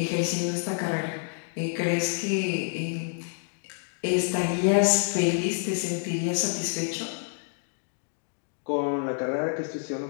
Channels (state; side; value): silent; right; 59 dB below the other